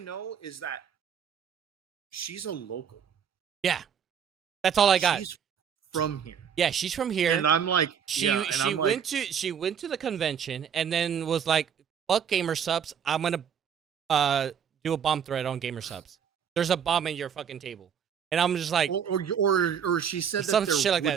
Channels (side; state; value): left; quieter; 7.8 dB